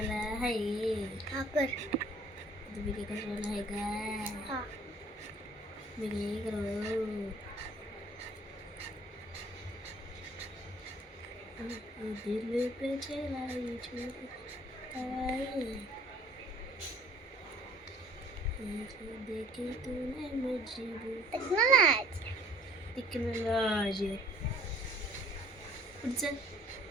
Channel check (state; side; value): normal; both; correlation 0.54